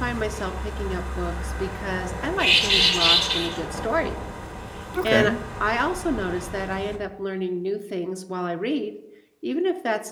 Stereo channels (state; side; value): identical; both; correlation 1.00